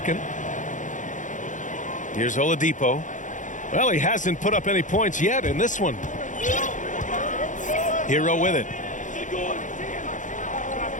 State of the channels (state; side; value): late; right; 0.37 ms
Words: Here's Oladipo. Well, he hasn't put up any points yet in this one. Hero with it.